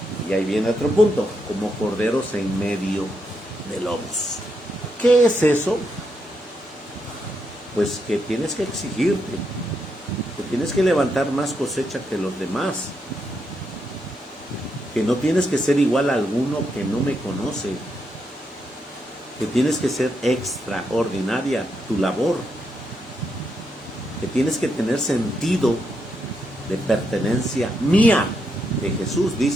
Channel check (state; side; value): normal; both; correlation 0.81